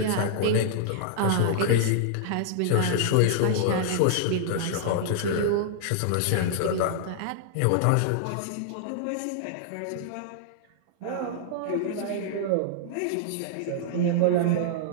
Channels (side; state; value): both; different; correlation -0.01